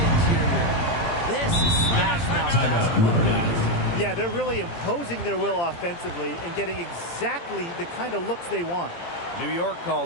interior. This is smash mouth basketball, guys. Yeah, they're really imposing their will offensively and getting exactly the kind of looks they want. New York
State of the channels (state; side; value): late; right; 17 ms